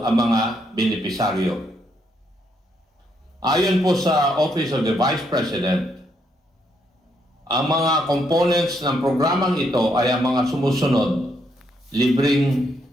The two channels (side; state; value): both; normal; correlation 0.75